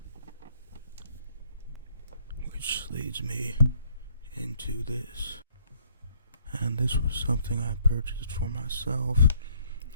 which leads me into this. And this was something I purchased for myself.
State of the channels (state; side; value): inverted; both; correlation -0.66